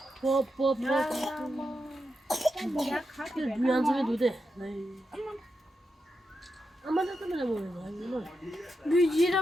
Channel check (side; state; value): both; normal; correlation 0.87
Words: पॉप पॉप दुनिया में जोदे अमना तो मैंने बोला